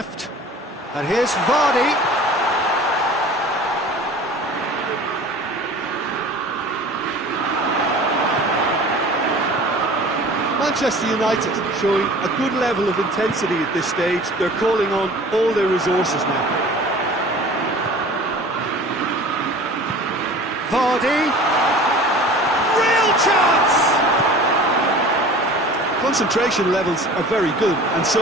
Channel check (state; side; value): normal; both; correlation 0.42